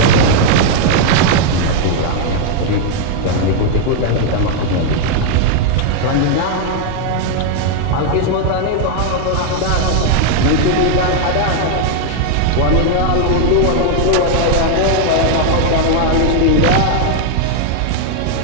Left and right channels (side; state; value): both; different; correlation 0.00